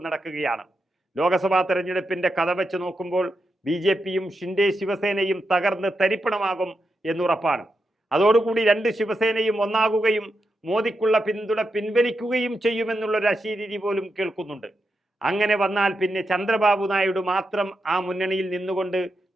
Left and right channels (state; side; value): normal; both; correlation 0.86